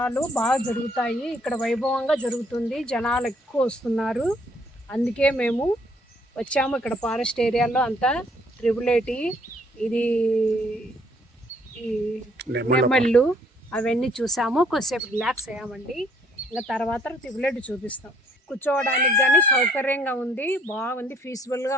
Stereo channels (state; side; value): normal; both; correlation 0.64